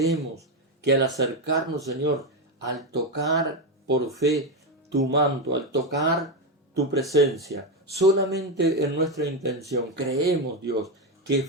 que al acercarnos, Señor, al tocar por fe tu manto, al tocar tu presencia, solamente en nuestra intención creemos, Dios, que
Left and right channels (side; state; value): both; normal; correlation 0.10